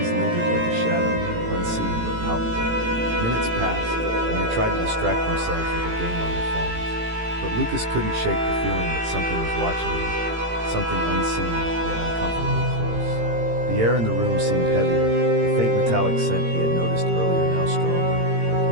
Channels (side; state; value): left; late; 18 ms